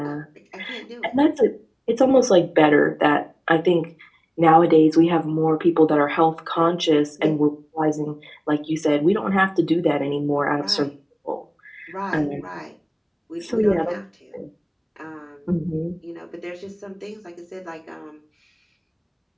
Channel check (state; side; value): identical; both; correlation 1.00